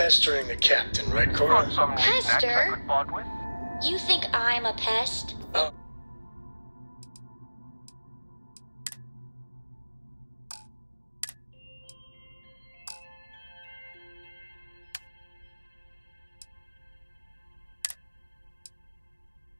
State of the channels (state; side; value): inverted; both; correlation -1.00